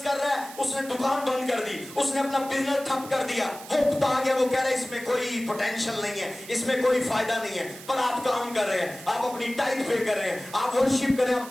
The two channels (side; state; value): right; noise; hiss, 16 dB below the sound